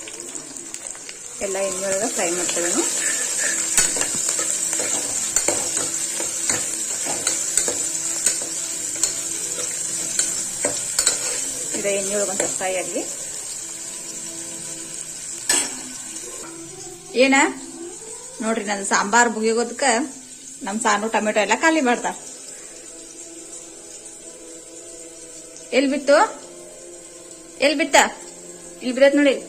ಎಲ್ಲ ಎಣ್ಣೆಯೊಳಗ ಫ್ರೈ ಮಾಡ್ತೇವೆ. ಇದು ಎಣ್ಣೆಯೊಳಗ ಒಂದ್ ಫ್ರೈ ಆಗಲಿ. ಏನ ನೋಡ್ರಿ, ನನ್ ಸಾಂಬಾರ್ ಮುಗಿಯೋದಕ್ಕ ನಮ್ ಸಾನು ಟೊಮೆಟೊ ಎಲ್ಲ ಖಾಲಿ ಮಾಡ್ತಾರ. ಎಲ್ ಬಿತ್ತು? ಎಲ್ ಬಿತ್ತ? ಇಲ್ಲಿ ಬಿಡತ್ ನೋಡಿ.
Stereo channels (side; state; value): both; identical; correlation 1.00